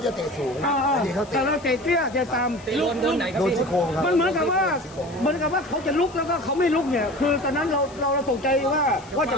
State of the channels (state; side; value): noise; left; hiss, 22 dB below the sound